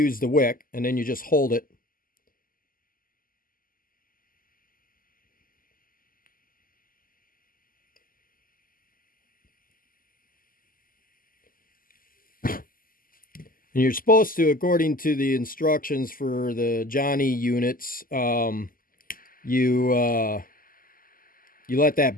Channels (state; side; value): late; right; 0.41 ms